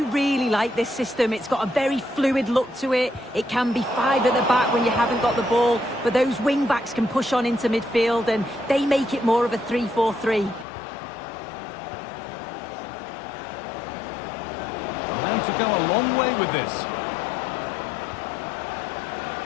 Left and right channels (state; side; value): drops out; right; at 10.7 s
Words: really like this system. It's got a very fluid look to it. It can be five at the back when you haven't got the ball, but those wing-backs can push on into midfield, and they make it more of a 3-4-3. Allowed to go a long way with this.